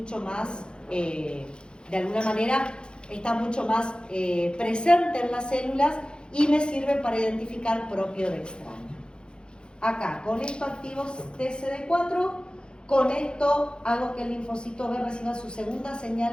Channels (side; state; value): right; late; 0.050 ms